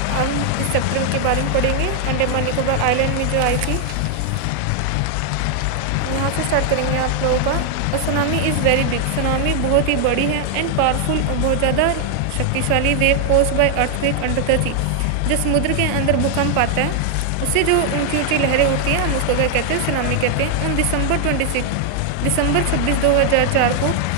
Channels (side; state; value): both; different; correlation 0.00